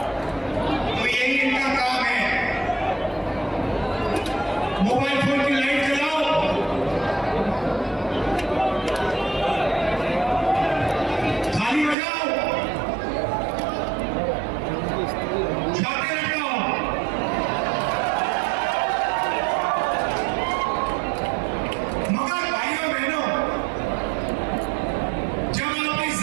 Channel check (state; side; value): drops out; left; at 12.0 s